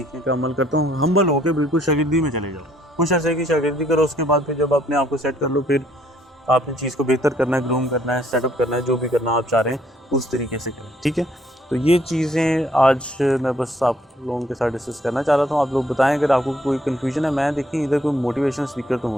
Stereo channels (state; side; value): normal; both; correlation 0.65